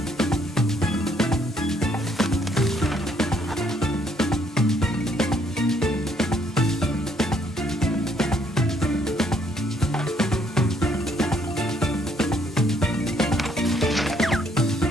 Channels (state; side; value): normal; both; correlation 0.68